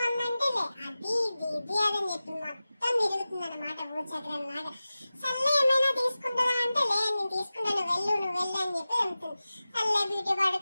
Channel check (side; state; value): both; inverted; correlation -0.96